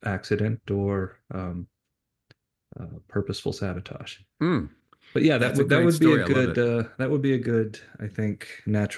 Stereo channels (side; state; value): both; identical; correlation 1.00